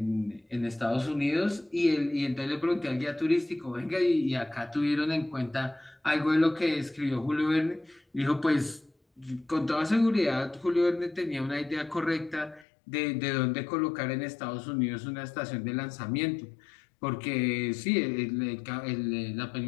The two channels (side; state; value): right; drops out; at 12.7 s